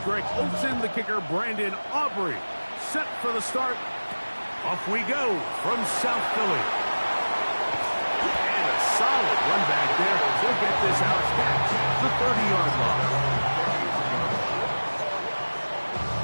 Greg Olson, the kicker, Brandon Aubrey. Set for the start. Off we go from South Philly. And a solid run back there. He'll get this out catch, the 30-yard line.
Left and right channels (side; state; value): both; inverted; correlation -1.00